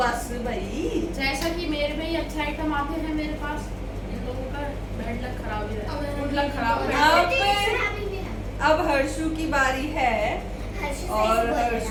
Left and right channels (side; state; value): both; identical; correlation 1.00